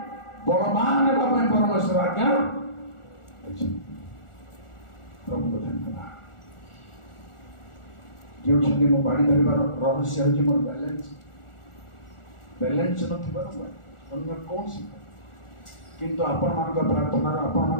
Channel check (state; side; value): late; right; 1.4 ms